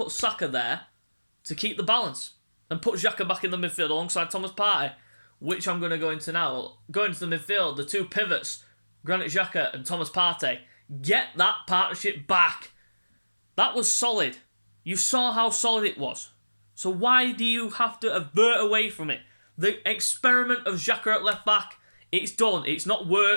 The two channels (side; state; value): both; inverted; correlation -1.00